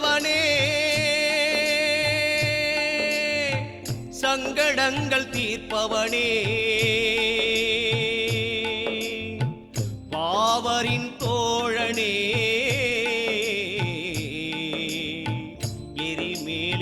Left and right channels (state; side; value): identical; both; correlation 1.00